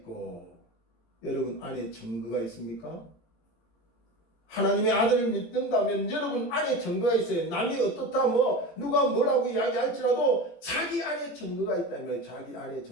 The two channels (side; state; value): right; late; 18 ms